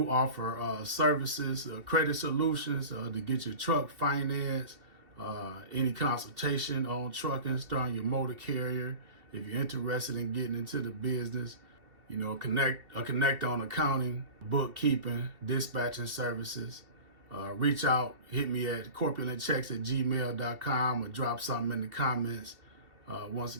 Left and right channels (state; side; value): late; left; 2.8 ms